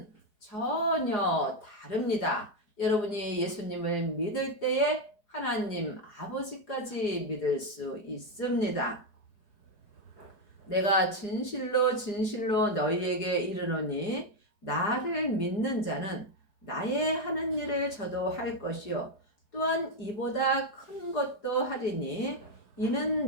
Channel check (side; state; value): right; late; 4.8 ms